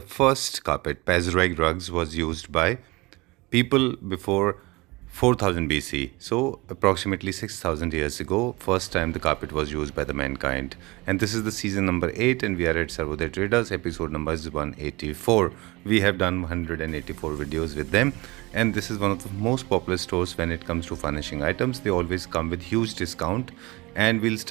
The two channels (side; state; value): left; quieter; 23.2 dB